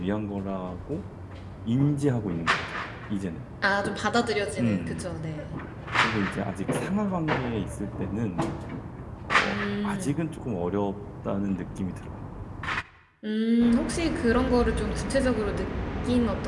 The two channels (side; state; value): both; identical; correlation 1.00